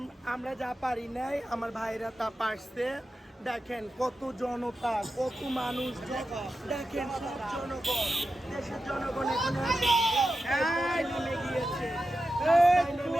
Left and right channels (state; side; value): normal; both; correlation 0.91